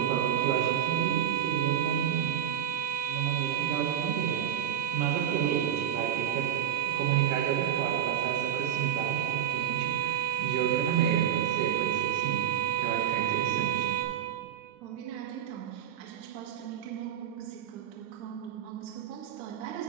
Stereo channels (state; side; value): quieter; left; 10.1 dB